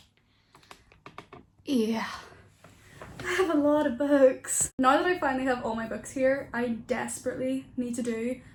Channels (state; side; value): identical; both; correlation 1.00